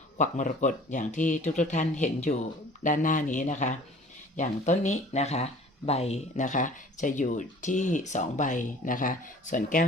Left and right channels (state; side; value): normal; both; correlation 0.48